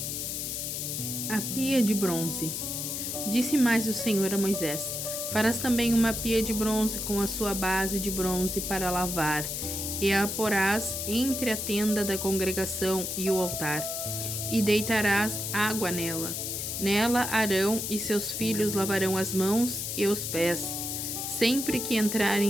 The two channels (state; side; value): noise; left; hiss, 3 dB below the sound